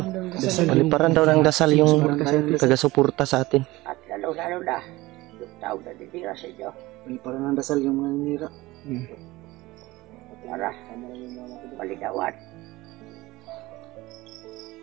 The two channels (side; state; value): left; quieter; 19.8 dB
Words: Paliparan daw ng dasal yung taga-suporta sa atin. At lalo-lalo na yung tao na didira sa inyo Paliparan ng dasal yung mga nira. para maligawan